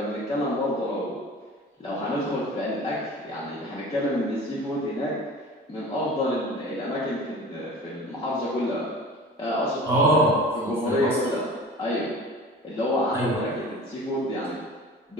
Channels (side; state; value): both; normal; correlation 0.40